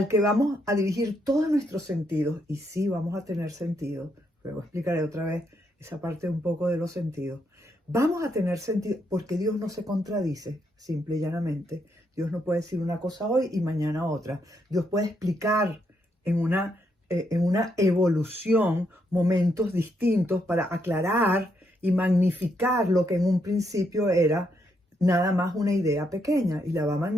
que vamos a dirigir todos nuestros sentidos. Y sí, vamos a tener sentido. Luego explicaré otra vez esa parte un poco de los sentidos. Vamos a tener sentido porque Dios no se contradice, simple y llanamente. Dios no puede decir una cosa hoy y mañana otra. Dios puede explicar en una evolución momentos distintos para aclarar y magnificar lo que en un principio era nada más una idea pequeña, y la va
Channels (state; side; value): normal; both; correlation 0.77